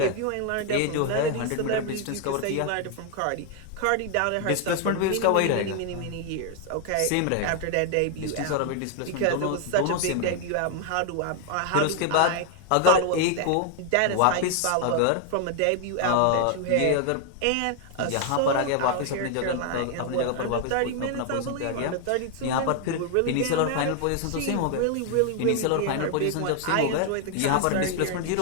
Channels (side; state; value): both; different; correlation 0.00